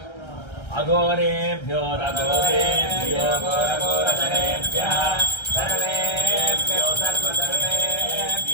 अघोरेभ्यो रघोरेभ्यो घोरघोरधरेभ्यः सर्वेभ्यो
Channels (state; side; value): late; right; 1.3 ms